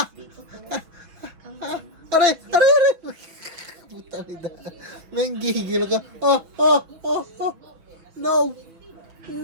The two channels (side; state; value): left; late; 6.2 ms